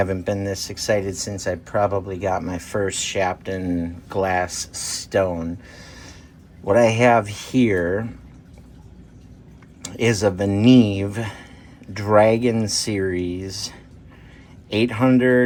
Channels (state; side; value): identical; both; correlation 1.00